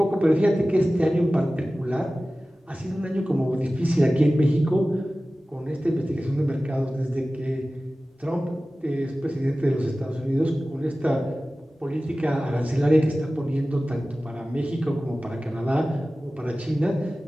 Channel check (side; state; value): both; normal; correlation 0.96